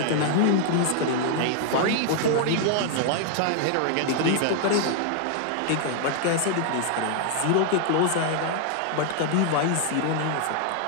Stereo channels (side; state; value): both; different; correlation 0.00